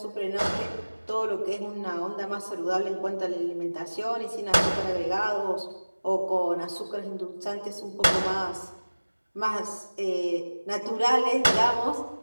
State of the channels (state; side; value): inverted; both; correlation -1.00